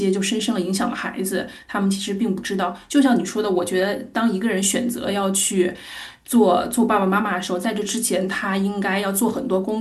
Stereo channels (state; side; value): identical; both; correlation 1.00